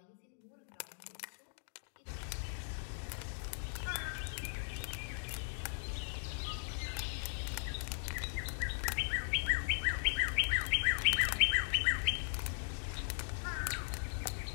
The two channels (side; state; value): right; silent; digital silence